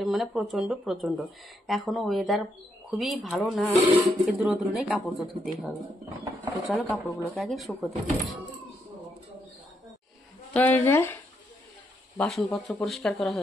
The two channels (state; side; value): normal; both; correlation 0.78